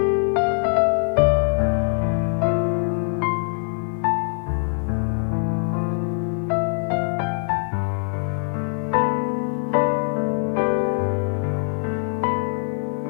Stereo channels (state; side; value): silent; right; 57 dB below the other